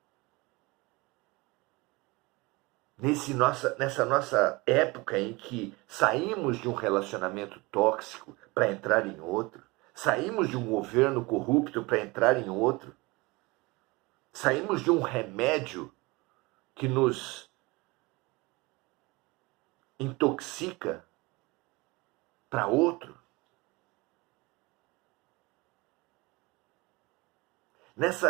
Nessa nossa época em que saímos de um relacionamento tóxico para entrar em outro, saímos de um governo corrupto para entrar em outro, saímos de um remédio que nos intoxica para outro.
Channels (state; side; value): quieter; left; 24.0 dB